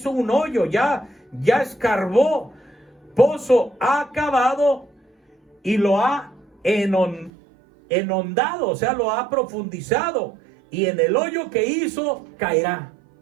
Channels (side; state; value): left; drops out; at 7.3 s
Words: un hoyo, ya escarbó. Pozo ha cavado y lo ha enhondado, o sea, lo ha profundizado, y en el hoyo que hizo caerá.